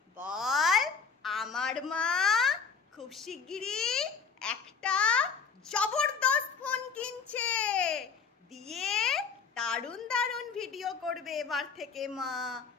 বল। আমার মা খুব শিগগিরই একটা জবরদস্ত ফোন কিনছে, দিয়ে দারুণ দারুণ ভিডিও করবে এবার থেকে মা।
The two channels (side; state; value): right; quieter; 5.8 dB